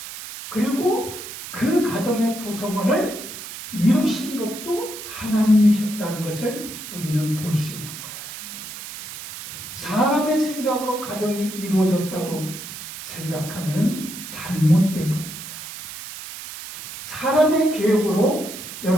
그리고 그 가정의 구성원을 이루신 것도 하나님이셨다는 것을 우리는 볼 수 있는 거예요. 사람의 생각으로 가정이 이루어졌다고 생각하면 잘못된 겁니다. 사람의 계획으로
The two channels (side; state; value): right; noise; hiss, 11 dB below the sound